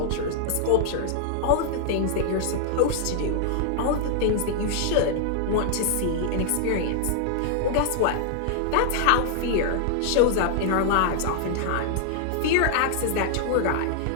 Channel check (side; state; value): both; different; correlation -0.01